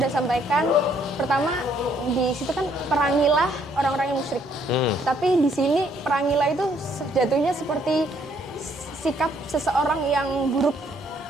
sampaikan, pertama di situ kan perangilah orang-orang yang musyrik. Tapi di sini perangilah itu jatuhnya seperti sikap seseorang yang buruk.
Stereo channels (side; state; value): both; normal; correlation 0.67